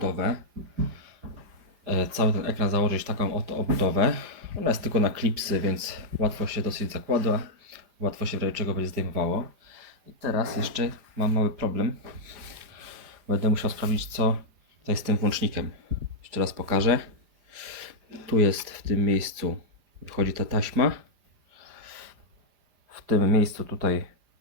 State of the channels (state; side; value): late; left; 5.0 ms